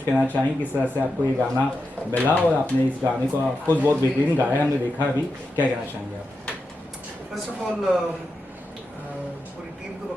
कहना चाहें, किस तरह से आपको ये गाना मिला और आपने इस गाने को आपको बहुत बेहतरीन गाया हमने देखा अभी, क्या कहना चाहेंगे आप? फर्स्ट ऑफ ऑल पूरी टीम को मैं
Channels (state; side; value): normal; both; correlation 0.88